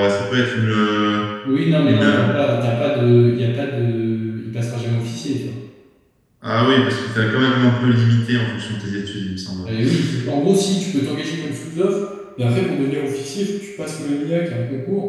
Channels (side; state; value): both; identical; correlation 1.00